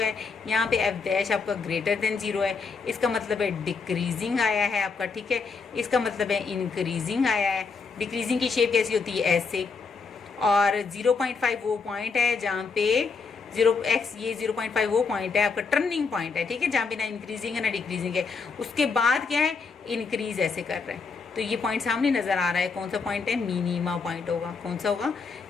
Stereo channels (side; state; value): right; quieter; 4.9 dB